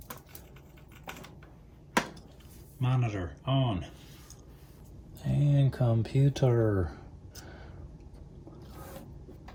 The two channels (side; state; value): both; identical; correlation 1.00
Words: Monitor on. And computer.